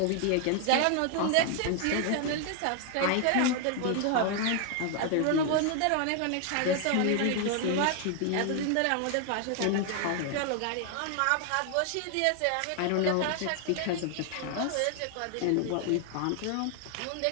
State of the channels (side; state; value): both; different; correlation 0.00